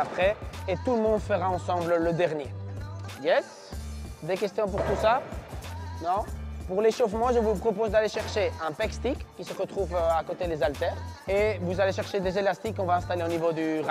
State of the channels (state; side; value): identical; both; correlation 1.00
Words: Et tout le monde fera ensemble le dernier. Yes? Des questions pour tout ça? Non? Pour l'échauffement, je vous propose d'aller chercher un pec stick qui se retrouve à côté des haltères. Et vous allez chercher des élastiques qu'on va installer au niveau du